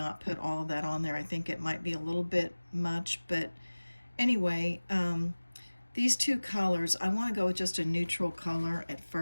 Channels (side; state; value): both; inverted; correlation -1.00